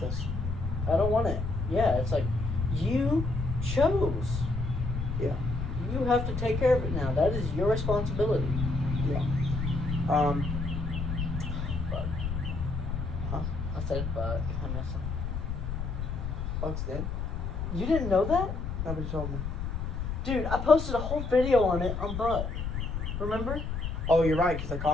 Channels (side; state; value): left; noise; rumble, 4 dB below the sound